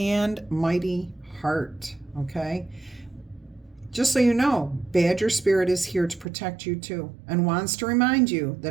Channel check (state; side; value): drops out; left; at 6.2 s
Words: mighty heart, okay? Just so you know, Badger Spirit is here to protect you too and wants to remind you